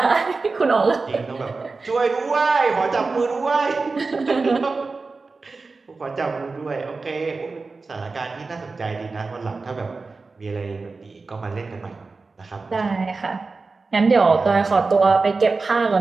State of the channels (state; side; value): quieter; left; 4.0 dB